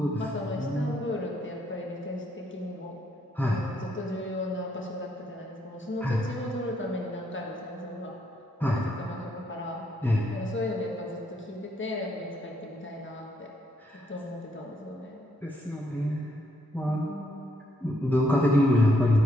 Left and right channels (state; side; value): normal; both; correlation 0.74